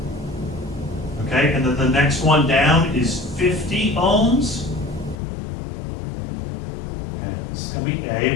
Okay, and then the next one down is 50 ohms. And this is going to be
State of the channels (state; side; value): drops out; right; at 5.2 s